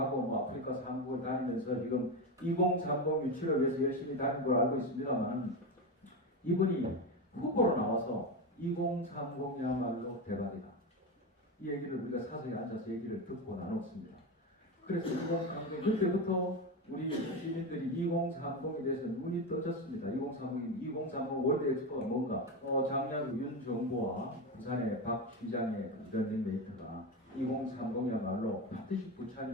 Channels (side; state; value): both; normal; correlation 0.17